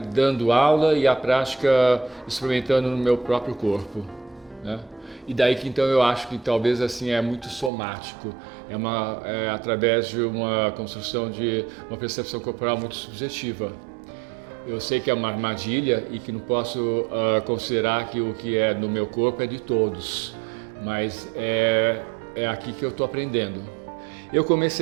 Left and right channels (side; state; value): left; drops out; at 7.7 s